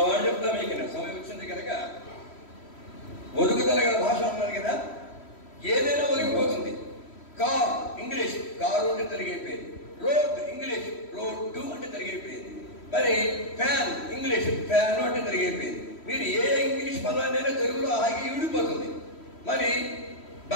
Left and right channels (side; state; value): right; late; 3.1 ms